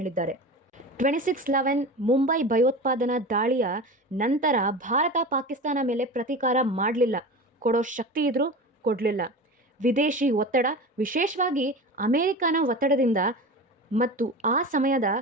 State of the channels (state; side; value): normal; both; correlation 0.30